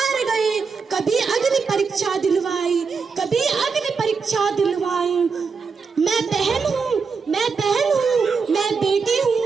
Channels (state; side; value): quieter; left; 5.2 dB